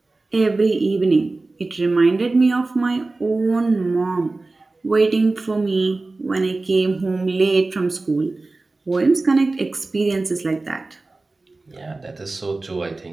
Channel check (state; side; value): quieter; left; 3.3 dB